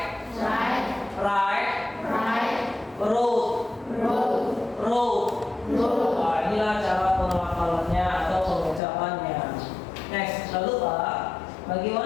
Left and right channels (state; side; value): drops out; right; at 8.8 s